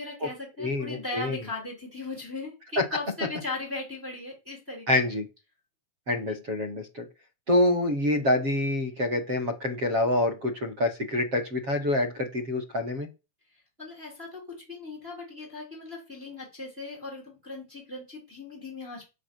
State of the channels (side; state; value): left; late; 7.4 ms